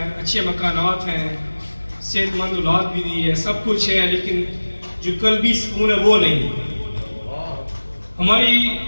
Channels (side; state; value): both; inverted; correlation -1.00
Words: اچھے مکانات ہیں، صحت مند اولاد بھی دی ہے، سب کچھ ہے، لیکن جو قلبی سکون ہے وہ نہیں. ہماری